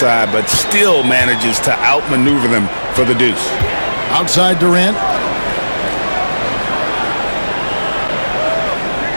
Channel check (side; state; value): both; inverted; correlation -1.00